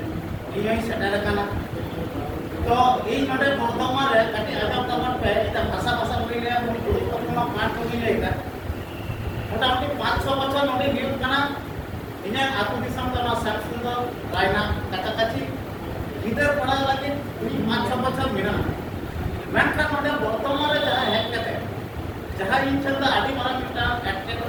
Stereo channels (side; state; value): both; identical; correlation 1.00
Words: ইনি সেটেল কানা তো এই নডে বর্তমান রে কাটি আজম কামন পে এটা ভাষা ভাষা বইলে গুরুত্বপূর্ণ পাঠ করিলে এটা মোটামুটি 5-6 বছর নডে হিউজ কানা ইনা আতু দিশম তো না সাকসুন্দর রায়না কাছাকাছি গিদার পড়া লাগে 5-6 বছর মিনা মেনখান নডে বর্তমান রে যাহা হেক কাতে যাহা ইনশাল্লাহ আদি মারা মিটা একটা